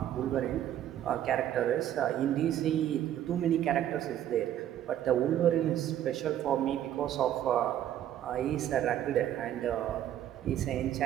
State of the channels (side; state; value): left; quieter; 11.4 dB